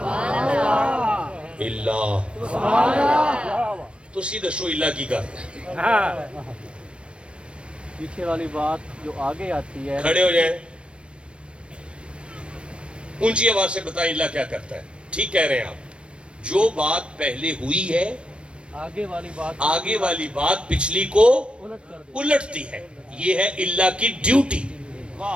اللہ تو سیدھا شو اللہ کی کر پیچھے والی بات جو آگے آتی ہے، کھڑے ہو جائیں، اونچی آواز سے بتائیں اللہ کیا کرتا ہے۔ ٹھیک کہہ رہے ہیں آپ، جو بات پہلے ہوئی ہے آگے والی بات پچھلی کو الٹتی ہے، یہ ہے اللہ کی ڈیوٹی۔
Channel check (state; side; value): late; left; 0.058 ms